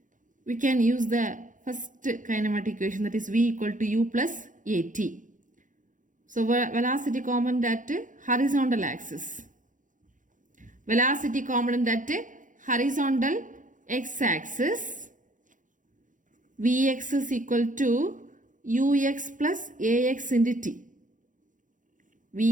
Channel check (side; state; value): left; late; 0.37 ms